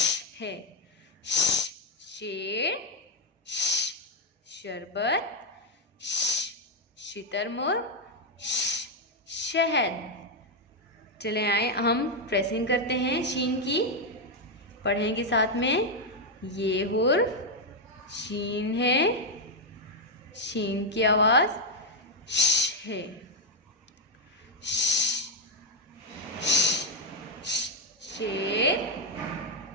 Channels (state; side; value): normal; both; correlation 0.02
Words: है। शेर, शरबत, शितरमुर्ग, शहद। चले आए हम प्रेसिंग करते हैं शीन की, पढ़ेंगे साथ में। ये हुर शीन है, शीन की आवाज श है। शेर,